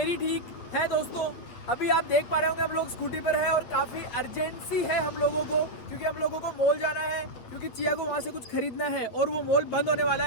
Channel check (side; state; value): right; late; 8.6 ms